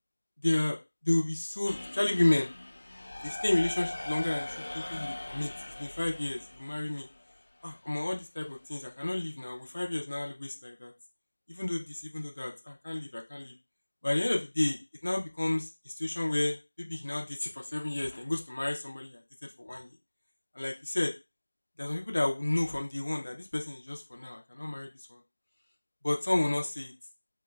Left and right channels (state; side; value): inverted; both; correlation -1.00